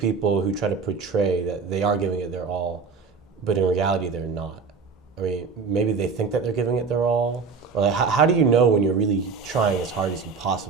who try to portray that they are giving it their all, but in reality they're not? I mean, maybe they think that they're giving it their all. Or like, how do you know when you're really trying as hard as you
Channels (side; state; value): left; quieter; 5.1 dB